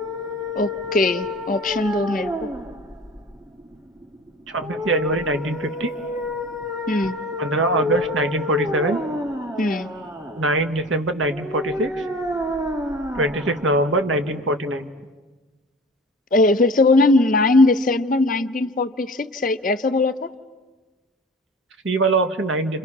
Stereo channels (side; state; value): both; normal; correlation 0.40